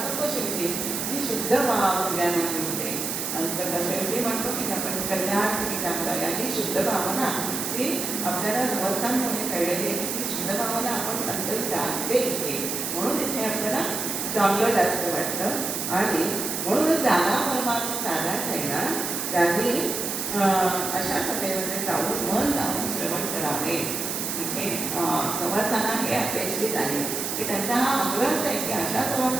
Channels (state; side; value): noise; right; hiss, 3 dB below the sound